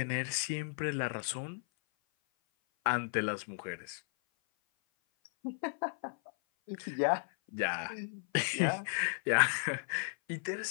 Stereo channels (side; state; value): right; silent; 55 dB below the other